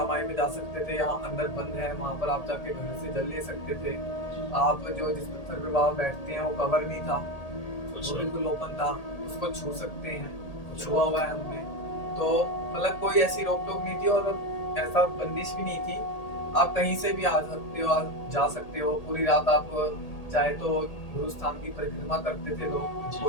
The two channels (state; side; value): late; right; 1.8 ms